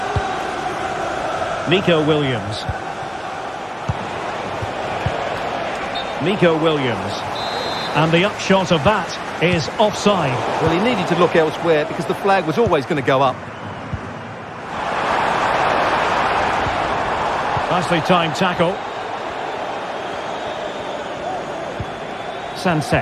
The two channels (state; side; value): identical; both; correlation 1.00